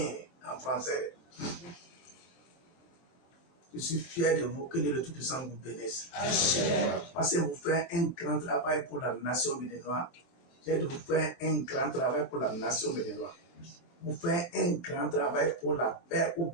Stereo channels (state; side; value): late; right; 23 ms